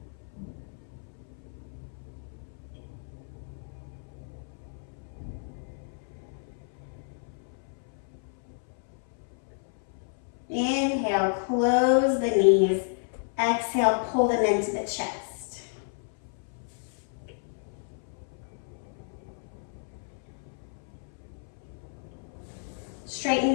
Inhale, close the knees. Exhale, pull them into the chest. Straighten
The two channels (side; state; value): right; silent; 57 dB below the other